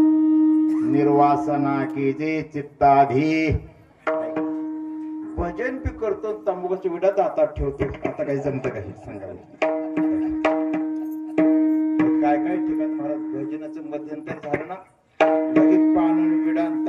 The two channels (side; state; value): both; identical; correlation 1.00